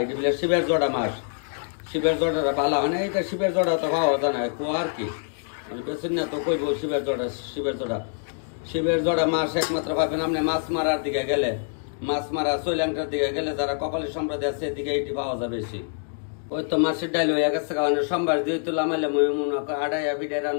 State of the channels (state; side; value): silent; right; digital silence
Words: এটা বলে শিবের জোড়া মাছ, শিবের জোড়াটা ভালো হয় না। এটা শিবের জোড়া তো পাওয়া যায় না, কুয়া আর কি বেশি না তো কইব। শিবের জোড়া মাছ একমাত্র পাবেন আপনি মাছ মারার দিকে গেলে, মাছ মারা শ্রীলঙ্কার দিকে গেলে যারা কপালি সম্প্রদায় আছে এদিকে এটি পাওয়া যায় বেশি। ওই তো মাছের ডাইল হয়ে গেছে কারণে সোমবার দিয়ে তো লামাইলে আড়াইয়া বিডাই